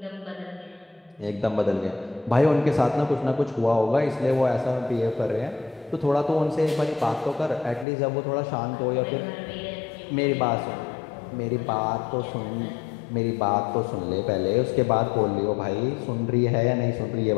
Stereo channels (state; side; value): drops out; right; at 7.9 s